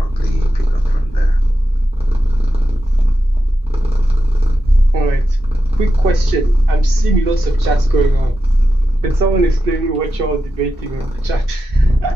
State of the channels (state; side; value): normal; both; correlation 0.89